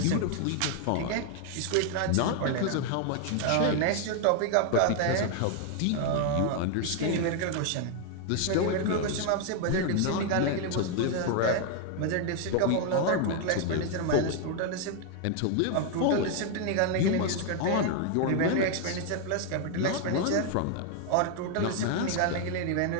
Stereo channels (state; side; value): different; both; correlation 0.01